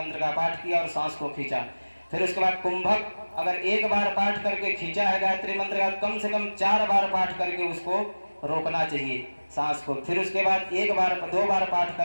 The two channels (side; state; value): both; inverted; correlation -1.00